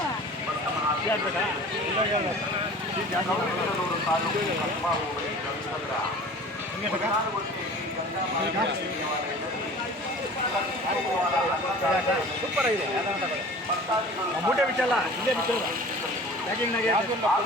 ಗೌರಿಬಿದನೂರು ತಾಲೂಕು ಕಸ್ಬಾ ಹೋಬಳಿ ಗಂಗಸಂದ್ರ ಸೂಪರ್ ಆಗಿದೆ ಮೂಟೆ ಬಿಚ್ಚಲ್ಲ ಇಲ್ಲೇ ಬಿಚ್ಚಲ್ಲ ಪ್ಯಾಕಿಂಗ್ನಾಗೆ ಹಾಗೂ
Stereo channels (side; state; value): both; normal; correlation 0.42